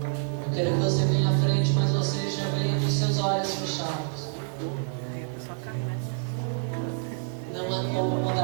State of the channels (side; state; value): left; silent; 60 dB below the other